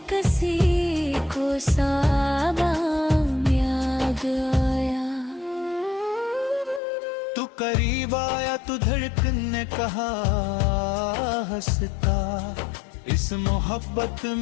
किसी को साबाम याद आया। तू करीब आया तो धड़कन ने कहा हंसता, इस मोहब्बत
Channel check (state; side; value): drops out; right; at 6.8 s